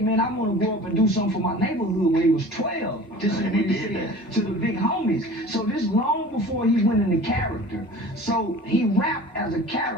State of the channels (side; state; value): both; normal; correlation 0.41